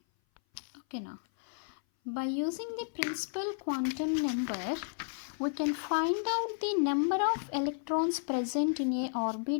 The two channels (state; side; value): silent; right; 56 dB below the other